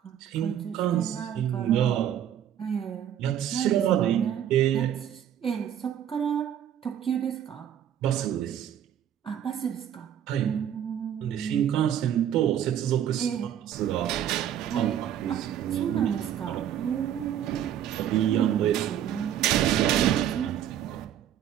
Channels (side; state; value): left; quieter; 10.2 dB